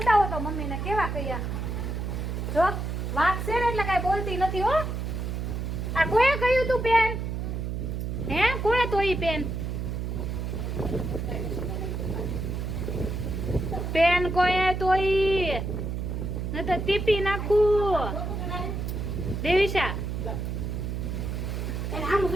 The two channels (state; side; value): noise; right; hum, 3 dB below the sound